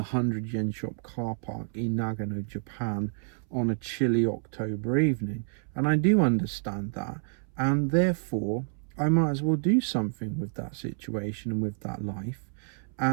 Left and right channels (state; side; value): silent; left; 59 dB below the other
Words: 100 yen shop car park in Nagano, Japan on a chilly October evening. And I do understand that. And therefore, I might as well do something with that situation and with that life.